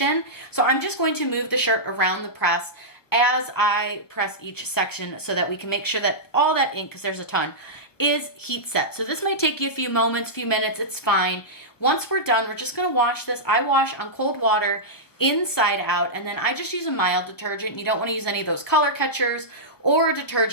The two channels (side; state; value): right; late; 1.1 ms